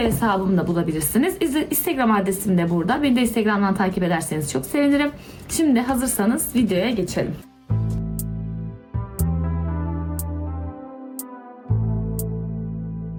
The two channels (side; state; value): both; identical; correlation 1.00